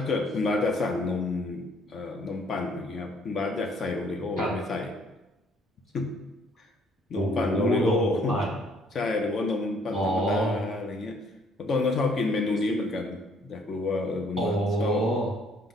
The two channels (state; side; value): normal; both; correlation 0.63